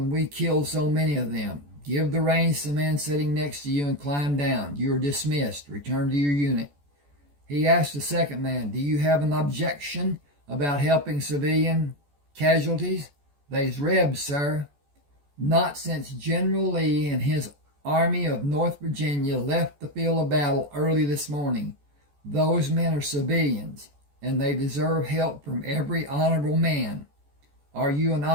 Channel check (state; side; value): late; left; 14 ms